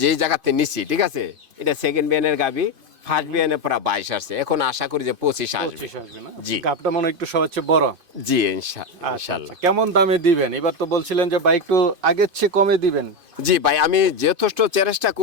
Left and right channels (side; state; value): left; late; 2.5 ms